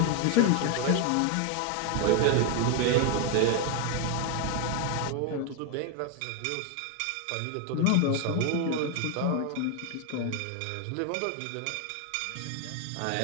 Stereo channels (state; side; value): different; both; correlation 0.01